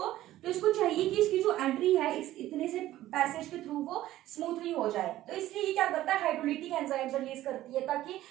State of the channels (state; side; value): quieter; left; 14.6 dB